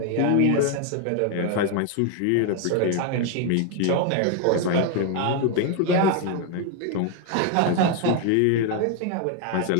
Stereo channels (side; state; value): both; different; correlation 0.01